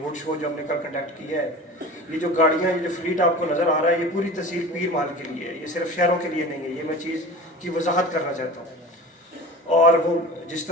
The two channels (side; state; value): both; normal; correlation 0.35